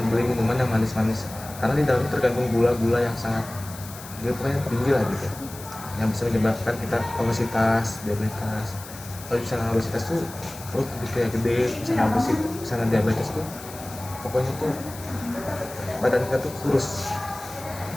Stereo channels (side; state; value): left; noise; hiss, 15 dB below the sound